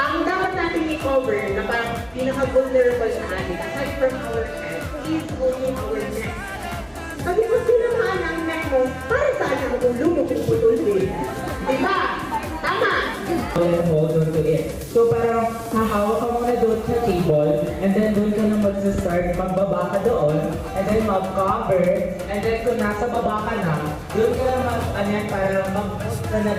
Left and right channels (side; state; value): both; identical; correlation 1.00